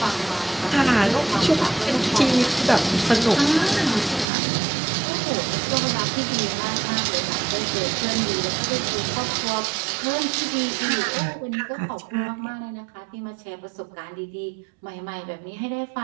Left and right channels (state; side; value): drops out; left; at 4.2 s